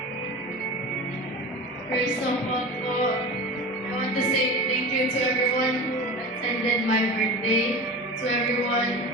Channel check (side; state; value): both; normal; correlation 0.31